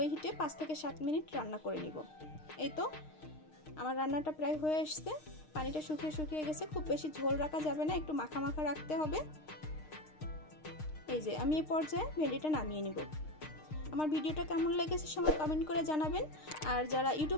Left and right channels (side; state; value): right; late; 6.5 ms